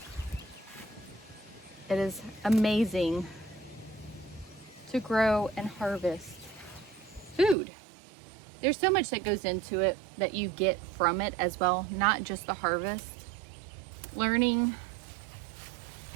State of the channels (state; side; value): drops out; left; at 7.6 s